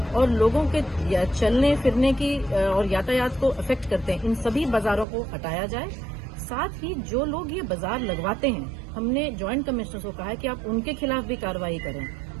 और लोगों के चलने फिरने की और यातायात को अफेक्ट करते हैं, इन सभी बाजारों को हटाया जाए। साथ ही जो लोग ये बाजार लगवाते हैं, हमने ज्वाइंट कमिश्नर को कहा है कि आप उनके खिलाफ भी कार्रवाई करें।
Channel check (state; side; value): drops out; left; at 5.1 s